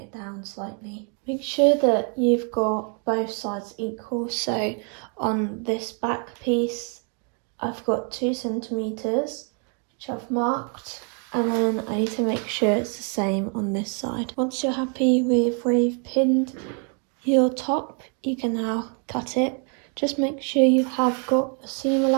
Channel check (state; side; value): quieter; left; 39.6 dB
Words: down slightly. Make sure that you've got both sides equal. So on this back piece, I've got 2 centimetres, which I've marked, and then I need to make sure it's the same on this side. Once you're happy with where you've pinned your top, you can now cut it. Just make sure you have got a seam